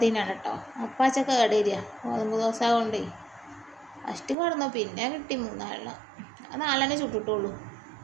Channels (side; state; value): left; drops out; at 4.4 s